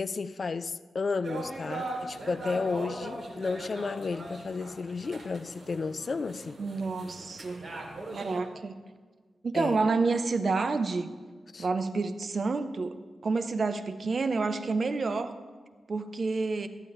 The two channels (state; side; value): normal; both; correlation 0.89